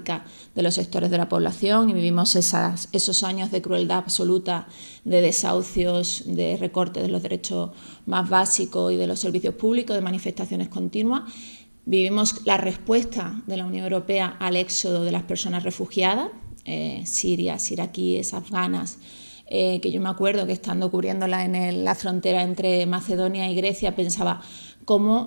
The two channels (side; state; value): both; inverted; correlation -1.00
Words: de los sectores de la población, y vivimos esos años de crueldad absoluta, de desahucios, de recortes de los derechos más básicos y de los servicios públicos, de manifestaciones continuas. Vivimos la respuesta de la Unión Europea al éxodo de las personas refugiadas, sirias, iraquíes, afganas, que yo me acuerdo que estando cubriéndola en la frontera entre Macedonia y Grecia pensaba